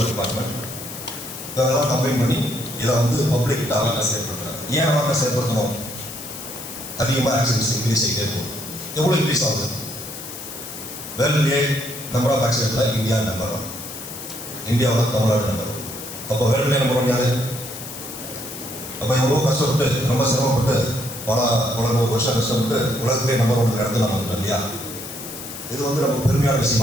department, இதெல்லாம் கம்பைன் பண்ணி இதை வந்து பப்ளிக் அவேர்னஸ் ஏற்படுத்துறாங்க. ஏன் அவேர்னஸ் ஏற்படுத்தணும்? அதிகமாக ஆக்சிடென்ட்ஸ் இன்க்ரீஸ் ஆகிட்டே இருக்கும். எவ்வளோ இன்க்ரீஸ் ஆகுது? வேர்ல்ட்லேயே நம்பர் ஆஃப் ஆக்சிடென்ட்டில் இந்தியா நம்பர் 1, இந்தியாவில் தமிழ்நாடு நம்பர் 1. அப்போ வேர்ல்ட்லேயே நம்பர் 1 யாரு? அப்போ எவ்வளோ கஷ்டப்பட்டு ரொம்ப சிரமப்பட்டு பல வருஷம் கஷ்டப்பட்டு உலகத்திலே நம்பர் 1 இடத்துல நம்ம வந்துட்டோம் இல்லையா? இது வந்து நமக்கு பெருமையான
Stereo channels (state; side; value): noise; left; hiss, 11 dB below the sound